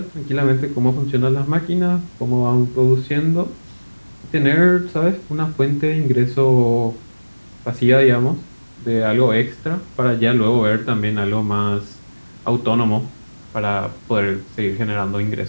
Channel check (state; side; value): inverted; both; correlation -1.00